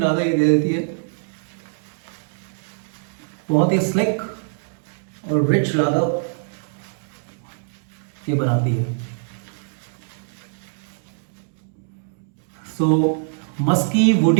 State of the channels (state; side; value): silent; left; 63 dB below the other